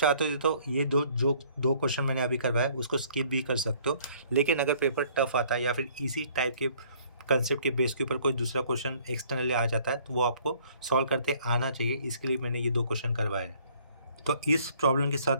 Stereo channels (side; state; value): both; inverted; correlation -0.59